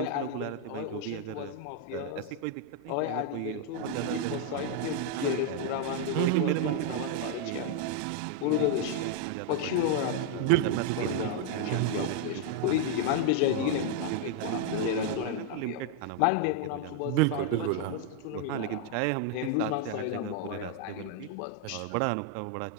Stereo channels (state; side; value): different; both; correlation 0.00